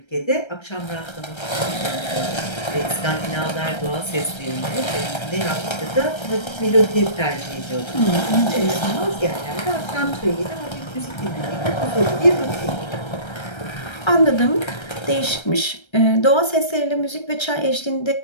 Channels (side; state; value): right; late; 1.3 ms